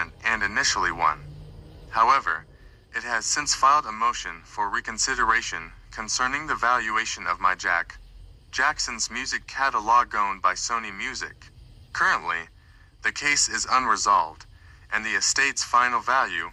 and initially won. However, it has since filed a motion for reconsideration concerning the valuation of Jackson's music catalog owned by Sony Music. Currently, the case is unresolved, and the estate's final value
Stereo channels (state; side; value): identical; both; correlation 1.00